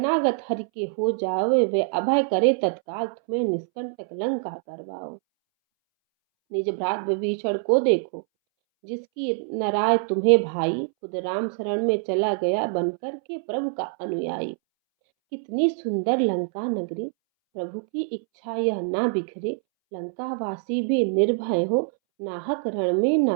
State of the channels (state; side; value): silent; left; 62 dB below the other